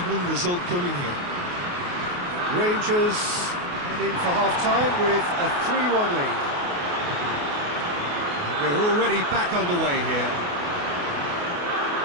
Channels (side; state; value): left; late; 28 ms